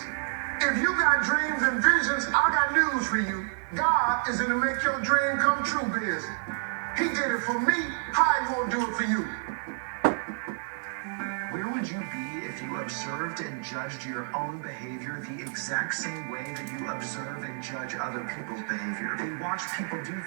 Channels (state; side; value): silent; left; digital silence